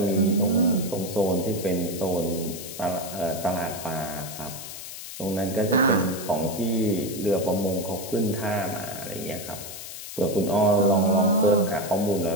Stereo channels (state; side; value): noise; left; hiss, 10 dB below the sound